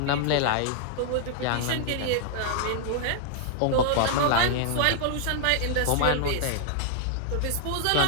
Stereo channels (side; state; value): both; different; correlation -0.01